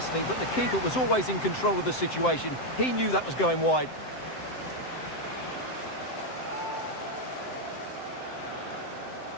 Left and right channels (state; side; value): late; right; 7.7 ms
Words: but the keeper was always in control of the situation. He knew that was going wide.